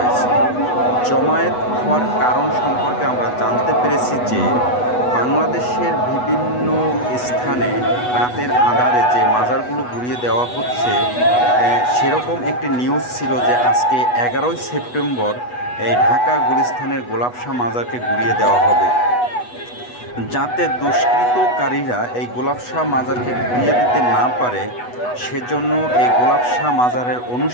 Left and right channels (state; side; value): late; right; 8.1 ms